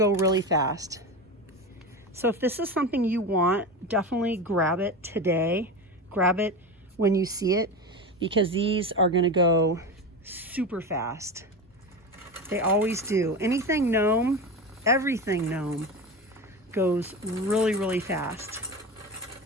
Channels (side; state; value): both; normal; correlation 0.24